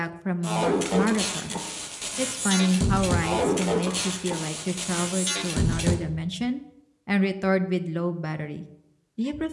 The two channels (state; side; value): identical; both; correlation 1.00